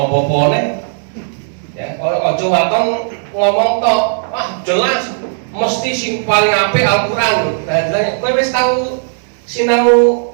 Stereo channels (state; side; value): silent; left; digital silence